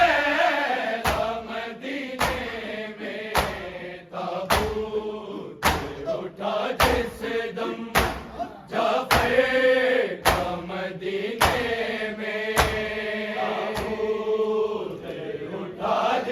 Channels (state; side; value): identical; both; correlation 1.00